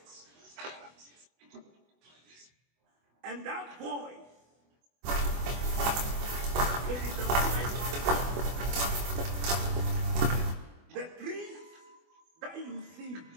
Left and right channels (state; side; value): late; left; 24 ms